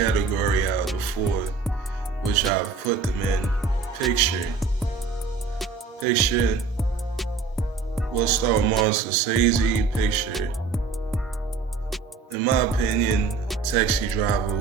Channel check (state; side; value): quieter; left; 4.7 dB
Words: out of the four, which I've put them in. Picture, we'll start with Martin Scorsese. Picture, in my opinion, Taxi Driver